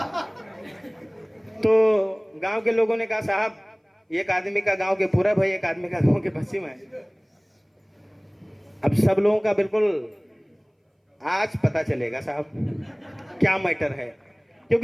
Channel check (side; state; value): both; identical; correlation 1.00